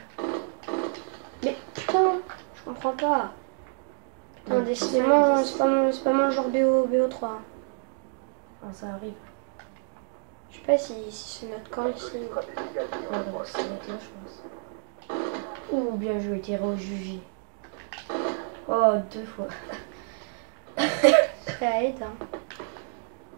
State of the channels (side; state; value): left; silent; digital silence